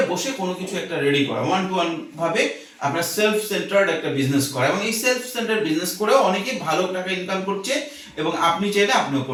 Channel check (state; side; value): identical; both; correlation 1.00